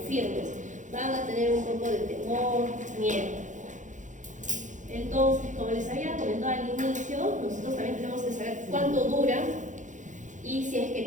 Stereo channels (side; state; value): left; late; 0.36 ms